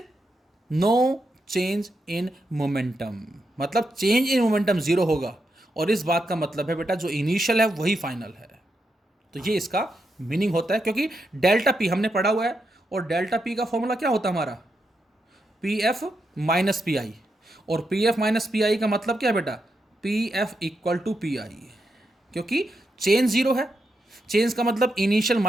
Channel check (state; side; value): normal; both; correlation 0.84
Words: no change in momentum, मतलब चेंज इन मोमेंटम जीरो होगा। और इस बात का मतलब है बेटा जो इनिशियल है वही फाइनल है। तो ये इसका मीनिंग होता है, क्योंकि डेल्टा पी हमने पढ़ा हुआ है, और डेल्टा पी का फॉर्मूला क्या होता है हमारा, P F minus P I. और P F minus P I का मतलब क्या है बेटा, P F equal to P I, क्योंकि चेंज जीरो है। चेंज का मतलब इनिशियल